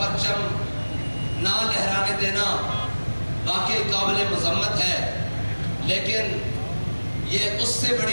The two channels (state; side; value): inverted; both; correlation -1.00